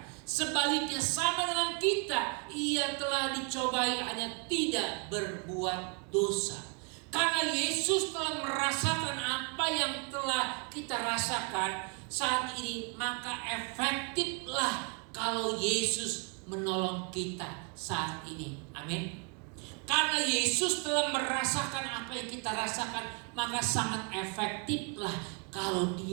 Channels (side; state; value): left; quieter; 36.1 dB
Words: Sebaliknya sama dengan kita, ia telah dicobai hanya tidak berbuat dosa. Karena Yesus telah merasakan apa yang telah kita rasakan saat ini, maka efektiflah kalau Yesus menolong kita saat ini. Amin. Karena Yesus telah merasakan apa yang kita rasakan, maka sangat efektiflah kalau